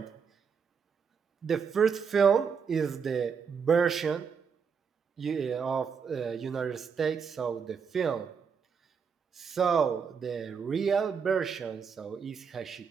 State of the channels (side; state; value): left; quieter; 6.3 dB